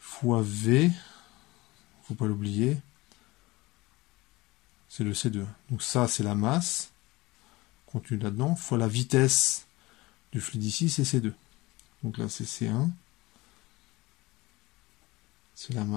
V, faut pas l'oublier, c'est le C2. Donc ça, c'est la masse contenue là-dedans, fois la vitesse du fluide ici, c'est C2. Donc là, c'est C1. C'est la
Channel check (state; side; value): quieter; right; 21.0 dB